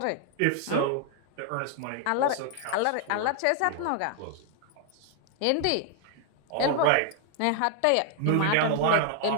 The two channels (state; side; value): different; both; correlation 0.00